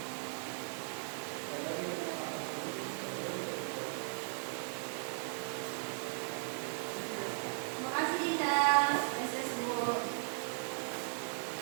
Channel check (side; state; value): left; silent; 53 dB below the other